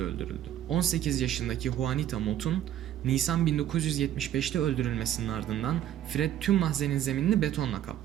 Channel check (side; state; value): left; quieter; 11.5 dB